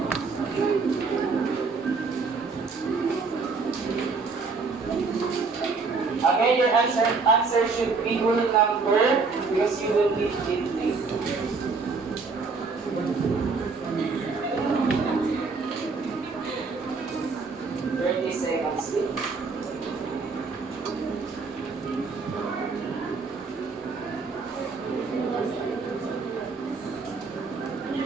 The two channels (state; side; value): quieter; left; 4.5 dB